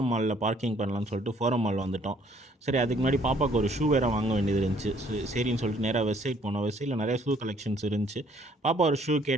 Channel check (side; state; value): both; normal; correlation 0.62